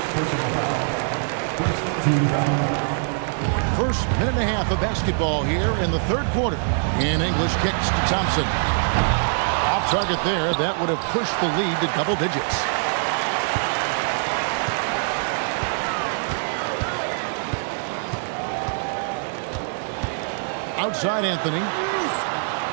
personal foul. First team foul. First minute and a half of basketball here in the 3rd quarter. And English kicks to Thompson. Off target there. That would have pushed the lead to double digits. Outside Anthony.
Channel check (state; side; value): silent; left; digital silence